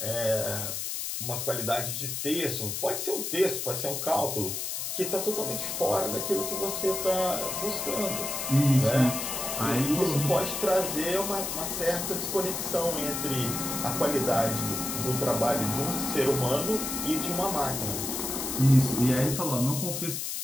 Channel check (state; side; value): noise; left; hiss, 3 dB below the sound